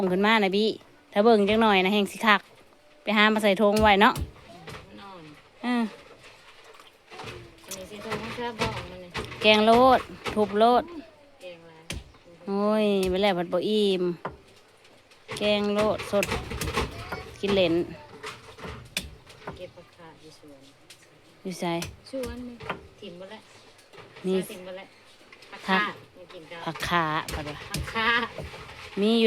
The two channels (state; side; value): identical; both; correlation 1.00